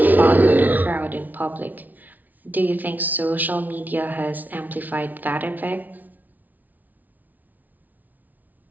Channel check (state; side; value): late; left; 0.080 ms